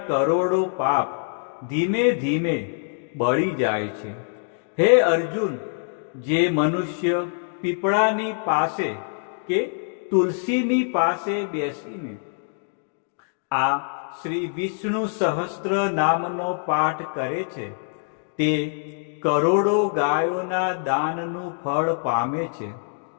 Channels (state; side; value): silent; right; 62 dB below the other